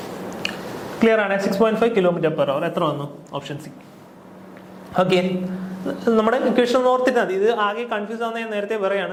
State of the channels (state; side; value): identical; both; correlation 1.00